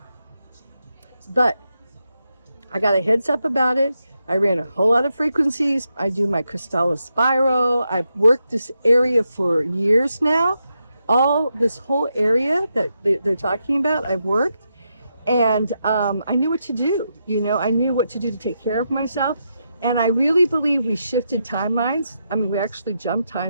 But I got a heads up about it. I ran a whole lot of frequencies. I do my Crystallis spiral. I've worked this area for years now. All this whole area that they're talking about, I've worked. And I knew what to do. I knew what to do to take care of myself. And I really believe we shifted timelines. I mean, we actually jumped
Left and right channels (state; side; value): inverted; both; correlation -0.84